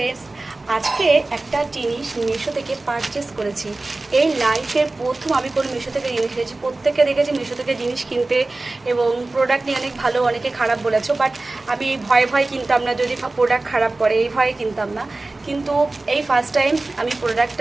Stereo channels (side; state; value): left; quieter; 3.1 dB